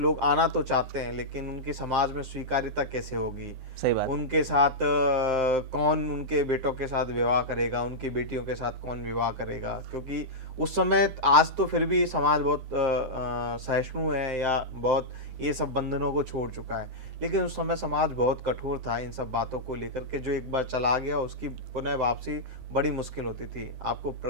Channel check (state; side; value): late; left; 9.7 ms